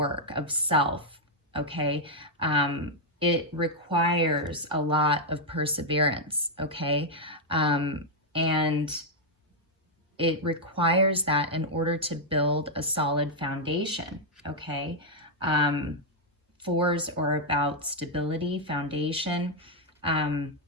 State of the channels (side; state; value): both; normal; correlation -0.02